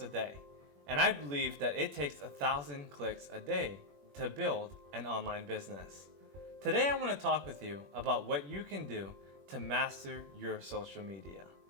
a day, and I believe that it takes 1,000 clicks a day to build an online business. Today I want to talk with you about what you can do to master your social media.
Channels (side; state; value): left; late; 21 ms